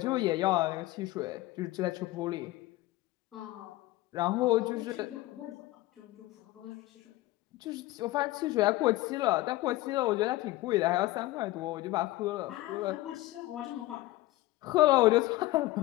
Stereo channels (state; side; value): quieter; right; 17.8 dB